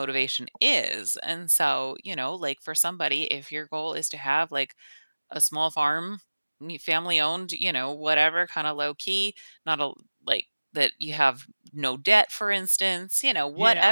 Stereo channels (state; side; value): inverted; both; correlation -1.00